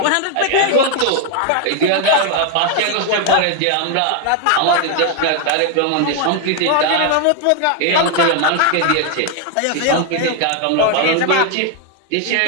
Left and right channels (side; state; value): both; different; correlation 0.00